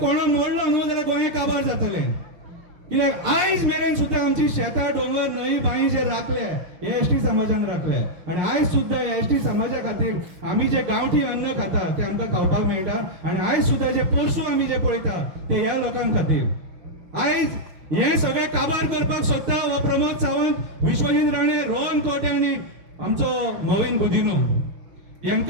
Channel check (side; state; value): left; late; 5.6 ms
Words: मोडलो न्हू जाल्यार गोंय काबार जातले. कित्याक आयज मेरेन सुद्धा आमची शेतां, डोंगर, न्हंय, बांय जे राखले हे एसटी समाजान राखले. आणि आयज सुद्धा एसटी समाजा खातीर आमी जे गांवठी अन्न खाता ते आमकां खावपाक मेळटा. आणि आयज सुद्धा जे पोरसूं आमी जे पळयता ते ह्या लोकांक खातीर. आयज हे सगळे काबार करपाक सोदता हो प्रमोद सावंत, विश्वजीत राणे, रोहन खंवटे आणि आमचो मोविन गुदिनो.